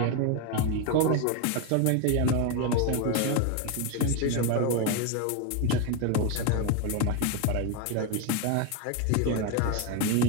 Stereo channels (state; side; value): different; both; correlation 0.02